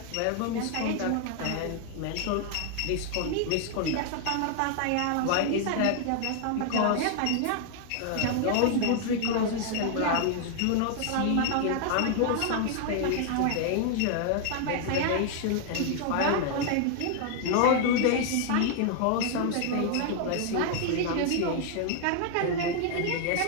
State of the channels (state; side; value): different; both; correlation 0.00